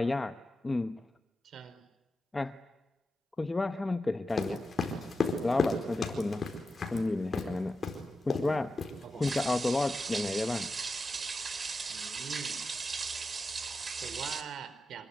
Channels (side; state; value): both; normal; correlation 0.90